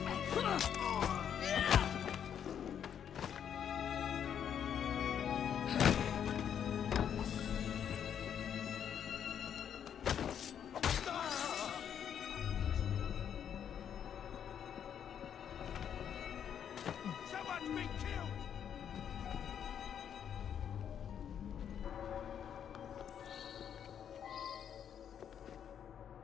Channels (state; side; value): quieter; right; 8.8 dB